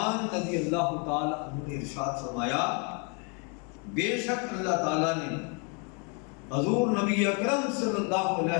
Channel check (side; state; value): right; quieter; 36.1 dB